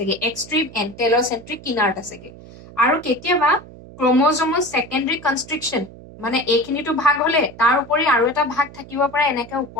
এক্সট্ৰিম এন্ড টেলোসেন্ট্ৰিক কিনাৰত আছেগে আৰু কেতিয়াবা ক্ৰমোজমৰ সেকেন্ডাৰী কনস্ট্ৰিকশন মানে এইখিনিটো ভাগ হলে তাৰ উপৰি আৰু এটা ভাগ থাকিব পাৰে এনেকে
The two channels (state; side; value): noise; right; hum, 18 dB below the sound